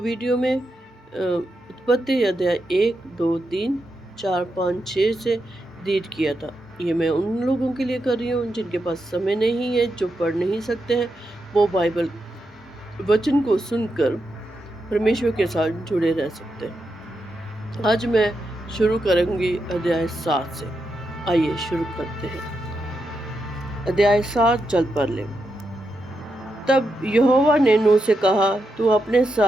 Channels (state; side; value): normal; both; correlation 0.85